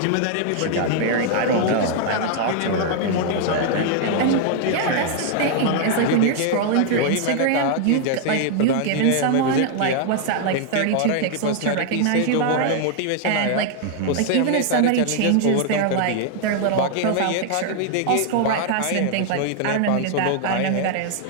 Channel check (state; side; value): different; both; correlation 0.00